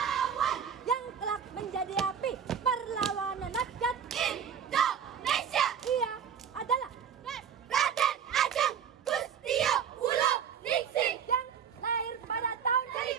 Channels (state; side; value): quieter; left; 7.8 dB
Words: yang kelak menjadi api perlawanan rakyat Indonesia. Ia adalah Raden Ajeng Kustio Wulo Ningsih yang lahir pada tahun